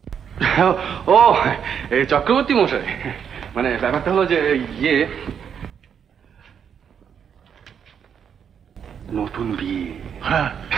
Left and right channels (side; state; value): left; quieter; 7.8 dB